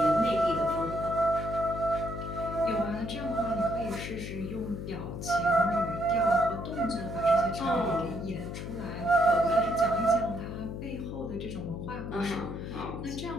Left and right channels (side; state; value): left; noise; hum, 7 dB below the sound